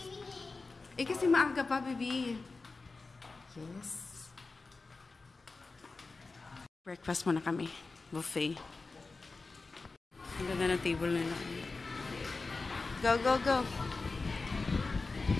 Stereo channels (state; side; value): quieter; right; 3.8 dB